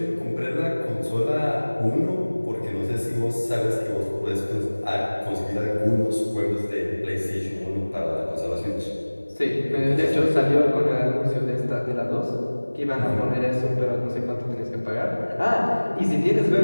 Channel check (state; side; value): inverted; both; correlation -1.00